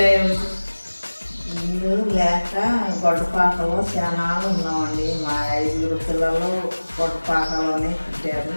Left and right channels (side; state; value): both; inverted; correlation -1.00